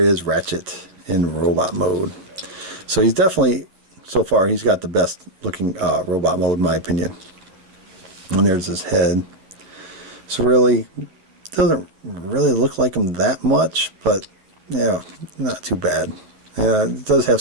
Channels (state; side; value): late; left; 11 ms